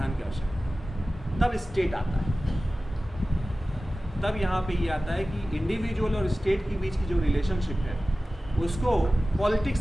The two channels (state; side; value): normal; both; correlation 0.96